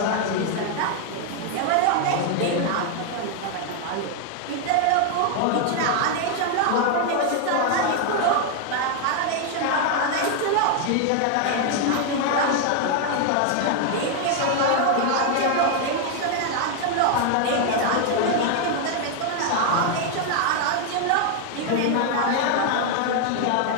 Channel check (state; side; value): different; both; correlation 0.00